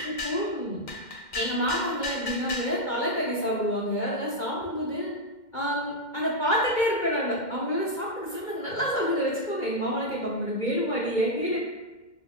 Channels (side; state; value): right; late; 2.1 ms